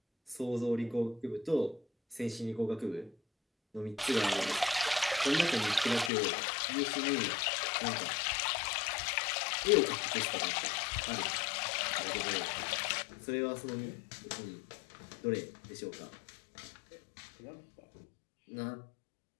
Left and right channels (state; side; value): drops out; right; at 6.1 s